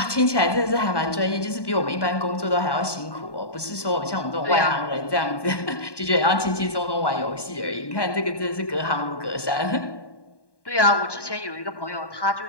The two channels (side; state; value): right; late; 1.1 ms